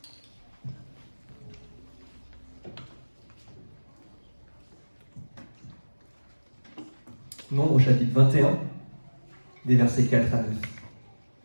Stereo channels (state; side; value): inverted; both; correlation -1.00